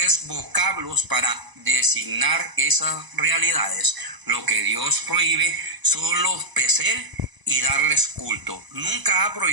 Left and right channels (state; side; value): late; left; 1.0 ms